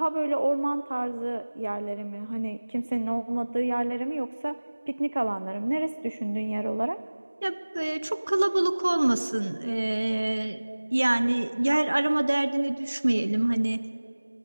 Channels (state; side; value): inverted; both; correlation -1.00